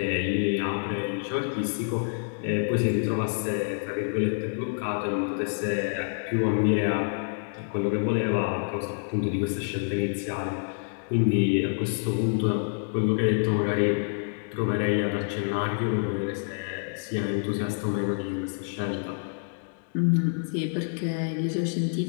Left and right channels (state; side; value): silent; right; digital silence